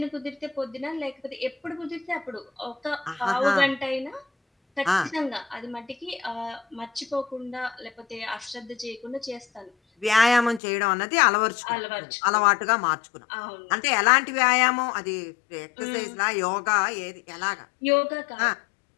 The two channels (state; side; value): drops out; right; at 10.6 s